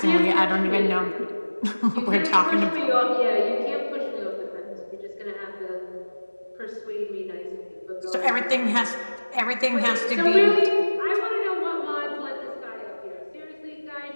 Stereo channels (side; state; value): both; inverted; correlation -1.00